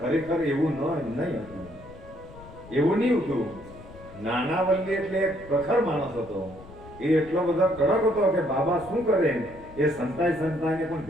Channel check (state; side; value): noise; left; rumble, 19 dB below the sound